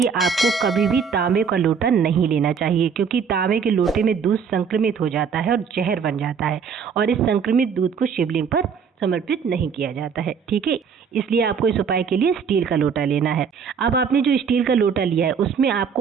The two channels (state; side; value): quieter; left; 6.4 dB